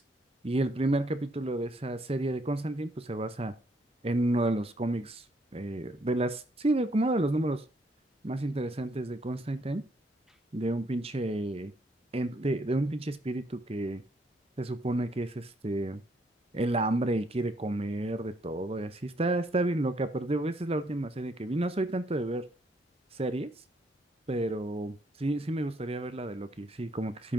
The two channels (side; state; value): both; normal; correlation 0.70